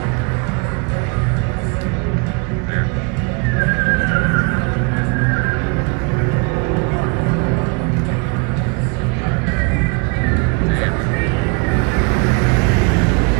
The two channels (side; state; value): left; quieter; 31.6 dB